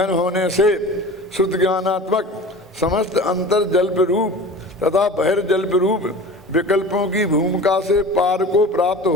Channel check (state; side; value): normal; both; correlation 0.37